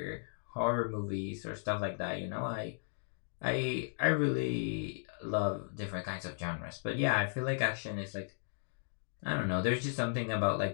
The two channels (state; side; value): silent; right; digital silence